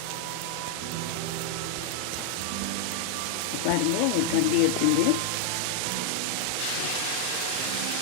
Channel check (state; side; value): different; both; correlation 0.00